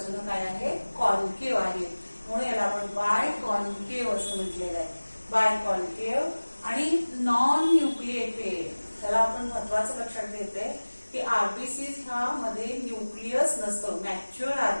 काय आहे? कॉन्केव आहेत. म्हणून याला आपण बाय कॉन्केव असं म्हटलेलं आहे. बाय कॉन्केव आणि नॉन न्यूक्लिएटेड. त्याला आपण महत्वाचं लक्षात घेतोय की आरबीसीज ह्या मध्ये न्यूक्लियस नसतं. Mature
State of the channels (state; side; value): inverted; both; correlation -1.00